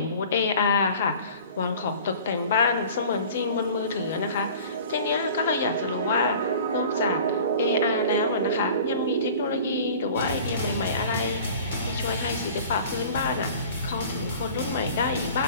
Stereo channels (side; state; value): both; inverted; correlation -0.44